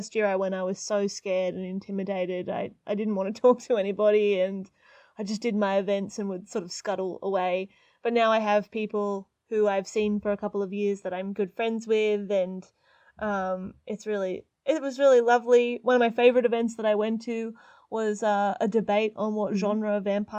year I went, I was so scared and intimidated. I didn't want to talk to anybody, and I just did my events and would sort of scuttle away. But now I have people who I've seen for a couple of years that I'm good friends with, and it was really lovely. One of my favourite events that I went to was a debate on what genre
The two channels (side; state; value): both; identical; correlation 1.00